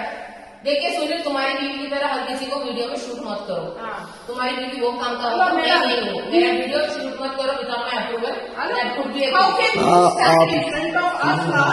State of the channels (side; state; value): both; identical; correlation 1.00